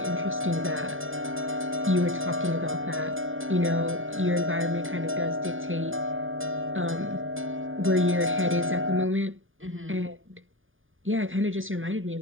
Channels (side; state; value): left; late; 0.58 ms